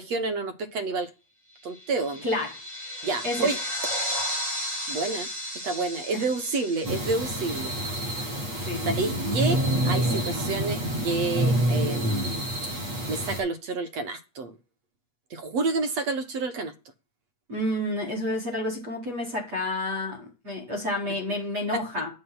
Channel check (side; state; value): left; late; 8.3 ms